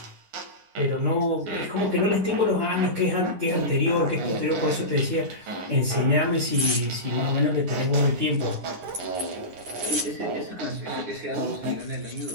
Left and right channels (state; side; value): late; left; 9.8 ms